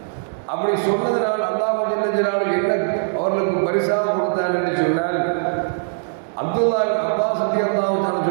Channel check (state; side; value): silent; left; digital silence